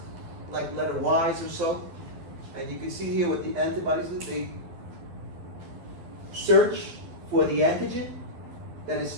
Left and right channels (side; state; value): left; late; 12 ms